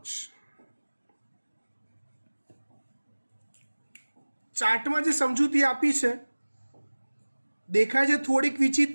ચાર્ટમાં જે સમજૂતી આપી છે દેખાય છે થોડીક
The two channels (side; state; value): both; inverted; correlation -1.00